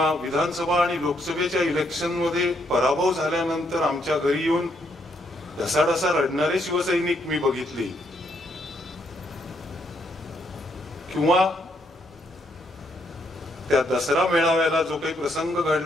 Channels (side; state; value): both; normal; correlation 0.74